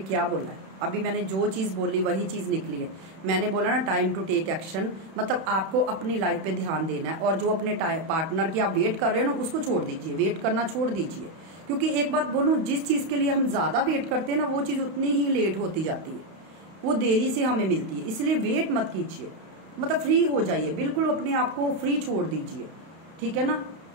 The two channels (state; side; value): late; left; 31 ms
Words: बोला है, अभी मैंने जो चीज बोली वही चीज निकली है। मैंने बोला ना टाइम टू टेक एक्शन, मतलब आपको अपनी लाइफ पे ध्यान देना है, और जो अपने पार्टनर की आप वेट कर रहे हो ना उसको छोड़ दीजिए, वेट करना छोड़ दीजिए। क्योंकि एक बात बोलूं, जिस चीज के लिए हम ज्यादा वेट करते हैं ना, वो चीज उतनी ही लेट होती जाती है, वो देरी से हमें मिलती है। इसलिए वेट मत कीजिए, मतलब फ्री हो जाइए, बिल्कुल अपने आप को फ्री छोड़ दीजिए। ठीक है ना,